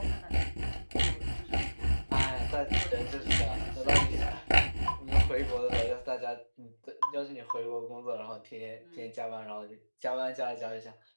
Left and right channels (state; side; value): inverted; both; correlation -1.00